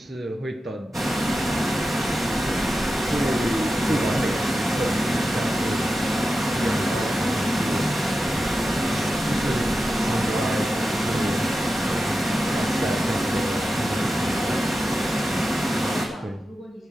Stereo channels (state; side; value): normal; both; correlation 0.91